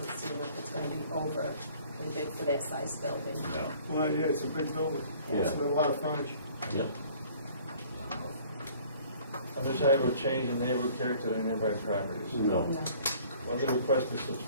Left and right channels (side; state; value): both; inverted; correlation -0.53